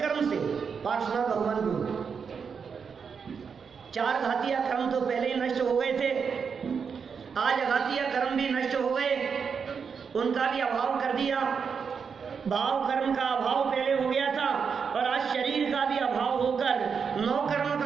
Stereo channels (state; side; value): quieter; left; 6.2 dB